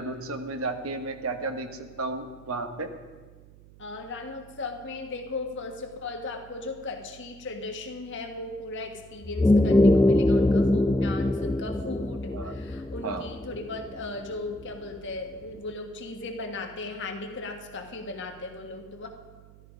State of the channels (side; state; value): right; noise; hum, 22 dB below the sound